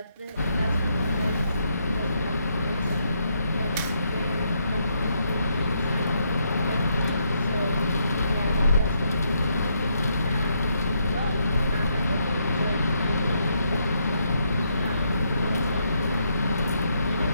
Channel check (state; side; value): inverted; both; correlation -0.77